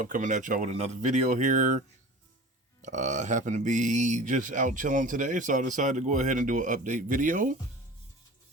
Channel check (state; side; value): normal; both; correlation 0.38